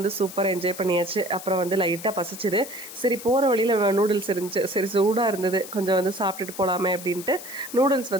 சூப்பராக என்ஜாய் பண்ணியாச்சு. அப்புறம் வந்து லைட்டாக பசிச்சுது. சரி போகிற வழியில் நூடுல்ஸ் இருந்துச்சு. சரி சூடாக இருந்தது, கொஞ்சம் வந்து சாப்பிட்டுட்டு போகலாமே அப்படின்ட்டு நூடுல்ஸ்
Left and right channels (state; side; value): noise; left; hiss, 13 dB below the sound